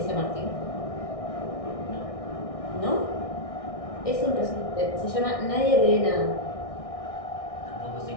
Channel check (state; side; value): late; right; 1.6 ms